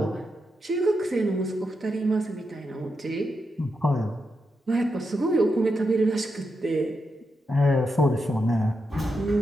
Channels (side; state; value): both; normal; correlation 0.85